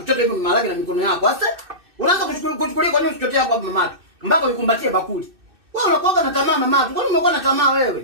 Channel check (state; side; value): late; left; 2.6 ms